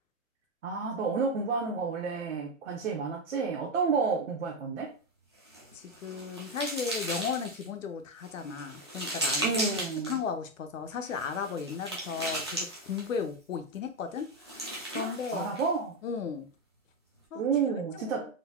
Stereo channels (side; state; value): both; normal; correlation 0.09